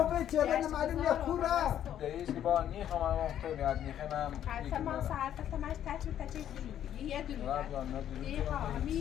چه غیر معلوم یه کوره دریش که با نیخوام من مختونی از نیخوام حرف ما ساعت تا ماش تچ یه درو یه ها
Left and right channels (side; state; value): right; quieter; 10.6 dB